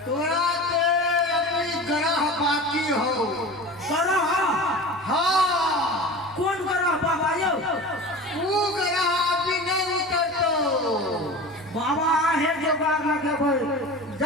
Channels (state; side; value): noise; right; rumble, 27 dB below the sound